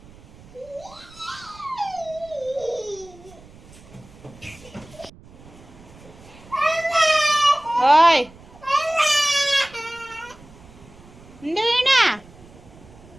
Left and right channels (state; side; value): noise; right; rumble, 22 dB below the sound